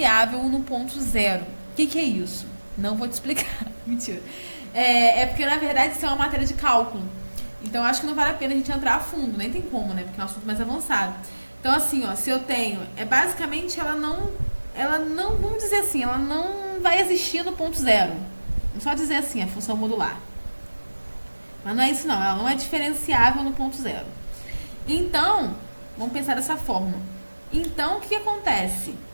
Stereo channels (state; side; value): inverted; both; correlation -1.00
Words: no ponto zero. O que é isso? Não vou te explicar. Mentira. Porque, na verdade, isso é uma matéria de cálculo. Então, acho que não vale a pena a gente entrar a fundo. Nem tem como, né? Porque é um assunto mais avançado. Então, assim, ó, se eu tenho... basicamente, ela não... Vamos dizer assim, ela não vai existir no ponto zero. Vamos só dizer assim, a função modular. Mas não é isso, não. Ela não é diferenciável no ponto zero. Então... Vamos pensar dessa forma. Então, o que acontece?